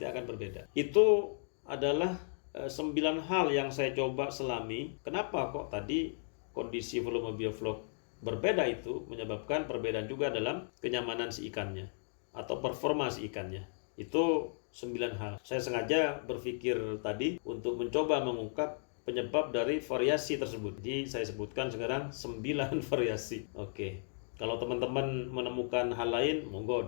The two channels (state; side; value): silent; right; digital silence